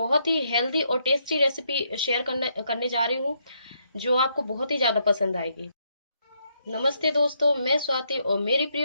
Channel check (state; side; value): inverted; both; correlation -0.75